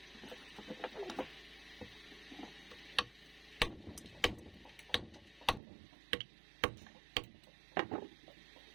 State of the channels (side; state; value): left; drops out; at 5.6 s